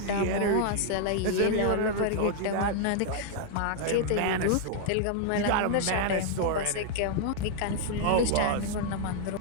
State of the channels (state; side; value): different; both; correlation -0.01